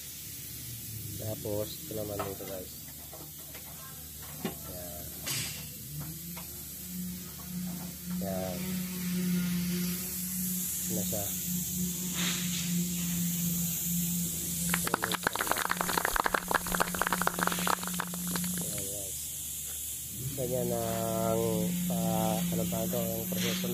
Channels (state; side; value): identical; both; correlation 1.00